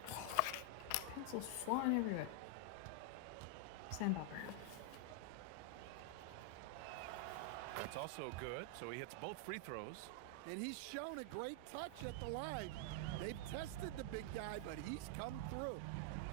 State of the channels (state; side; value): different; both; correlation 0.00